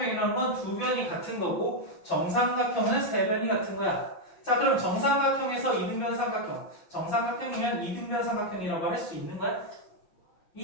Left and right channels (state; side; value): late; right; 5.8 ms